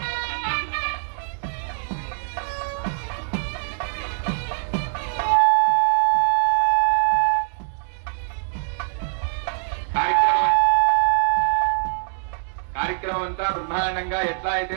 కార్యక్రమం అంతా బ్రహ్మాండంగా ఎట్లా అయితే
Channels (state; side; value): silent; left; 63 dB below the other